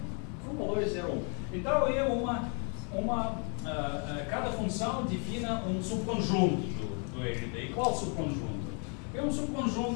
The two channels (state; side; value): quieter; right; 38.2 dB